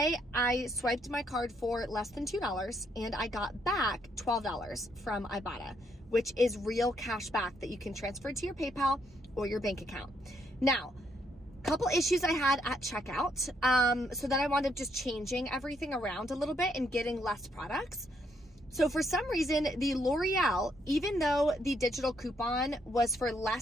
I swiped my card for less than $2 and I got back $12 from Ibotta, which is real cash back that you can transfer to your PayPal or your bank account. Now, couple issues I had at checkout. So then I wound up just changing everything around a little bit and getting less products. So for some reason, the L'Oreal, even though the digital coupon was for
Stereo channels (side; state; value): both; normal; correlation 0.73